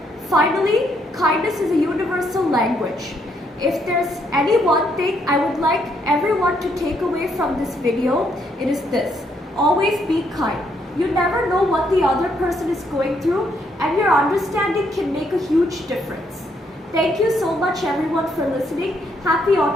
Finally, kindness is a universal language. If there's any one thing I would like everyone to take away from this video, it is this: always be kind. You never know what the other person is going through, and your understanding can make a huge difference. Thank you so much everyone for listening. Happy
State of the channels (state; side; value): normal; both; correlation 0.73